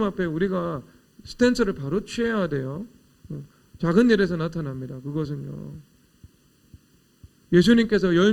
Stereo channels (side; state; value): both; identical; correlation 1.00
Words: 앞에 우리가 스탠스를 바로 취해야 돼요. 작은 일에서 나타납니다. 그것은요. 예수님께서